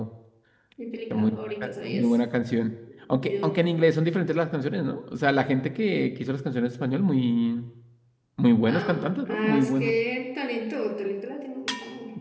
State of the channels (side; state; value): both; identical; correlation 1.00